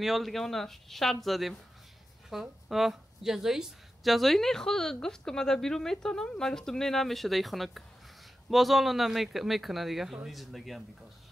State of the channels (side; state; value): both; normal; correlation 0.92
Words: حال دیگه اون شرط زدیم خب جزایی است جزایی نه خود گفت که من در بیرو میتونم من گفتم نه نمیشه در خنک باز حالا نمیکنه دیگه زندگی هم بیکاس